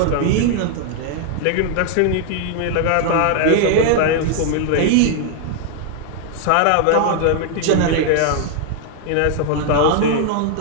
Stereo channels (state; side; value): different; both; correlation 0.00